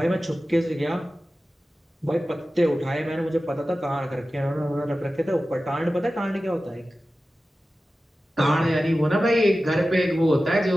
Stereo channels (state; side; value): normal; both; correlation 0.95